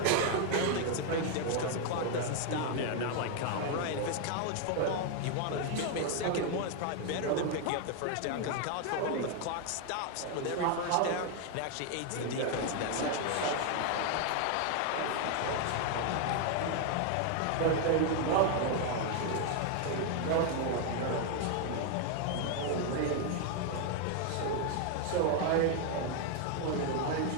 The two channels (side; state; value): both; different; correlation 0.01